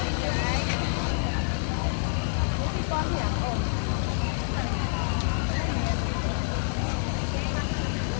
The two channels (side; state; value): right; silent; 60 dB below the other